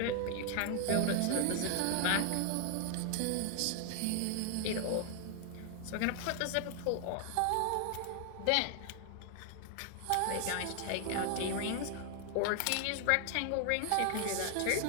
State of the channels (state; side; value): different; both; correlation 0.00